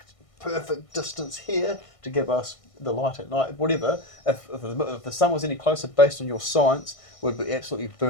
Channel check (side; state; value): right; late; 1.6 ms